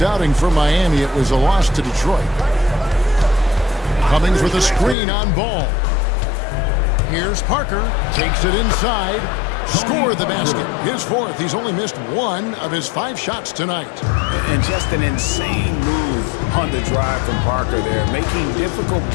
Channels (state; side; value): drops out; right; at 5.0 s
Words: outing for Miami, it was a loss to Detroit. Cummings with a screen on Ball. Here's Parker. Takes it inside. Scored the basket. His fourth. He's only missed one of his 5 shots tonight. And just an insane move on the drive from Parker there, making difficult